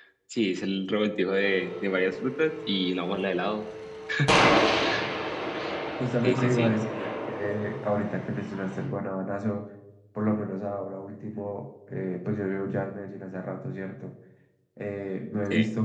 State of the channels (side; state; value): both; identical; correlation 1.00